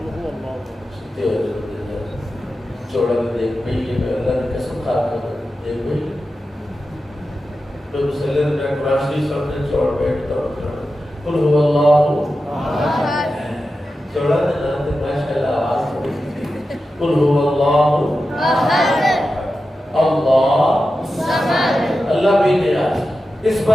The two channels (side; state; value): both; normal; correlation 0.92